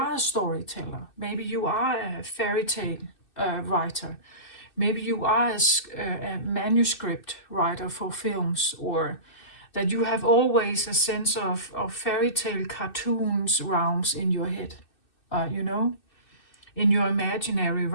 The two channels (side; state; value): right; late; 2.6 ms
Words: storyteller. Maybe you are a fairy tale writer. Maybe you are a manuscript writer for films, or that you have always a sense of fairy tale cartoons realms in your head, in your imaginary